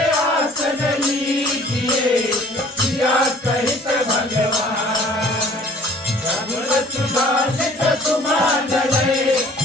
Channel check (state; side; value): normal; both; correlation 0.53